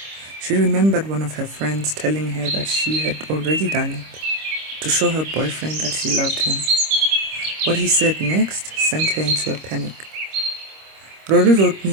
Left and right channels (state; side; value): late; left; 26 ms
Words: She remembered one of her friends telling her that she had already done it, to show her boyfriend that she loved him. What he said next sent her into a panic. Rory wrote